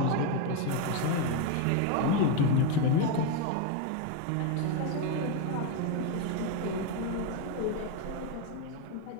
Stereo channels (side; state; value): both; different; correlation 0.02